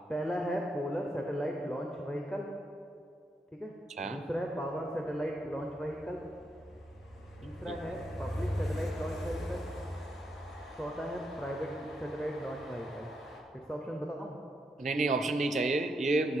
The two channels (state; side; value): normal; both; correlation 0.81